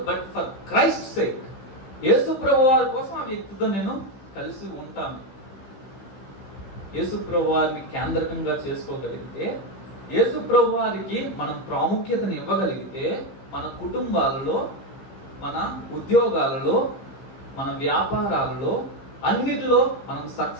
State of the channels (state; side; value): late; right; 15 ms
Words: బట్ ఫర్ క్రైస్ట్ సేక్, యేసు ప్రభు వారి కోసం ఆ వ్యక్తితో నేను కలిసి ఉంటాను. యేసు ప్రభు వారిని కేంద్రకంగా చేసుకోగలిగితే, యేసు ప్రభు వారికి మనం ప్రాముఖ్యతను ఇవ్వగలిగితే, మన కుటుంబాలలో, మన ఉద్యోగాలలో, మన వ్యాపారాలలో అన్నిటిలో మనం